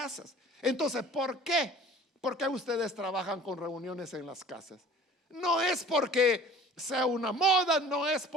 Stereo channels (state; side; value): normal; both; correlation 0.46